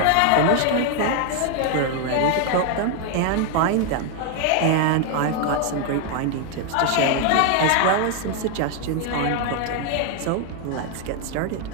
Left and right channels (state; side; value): different; both; correlation 0.00